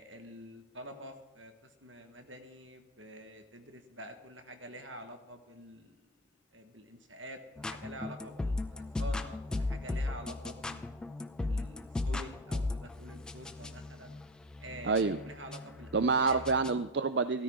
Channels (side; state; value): both; normal; correlation 0.17